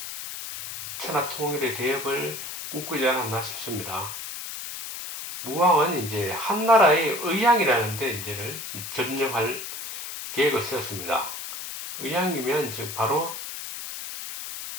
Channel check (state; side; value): noise; left; hiss, 8 dB below the sound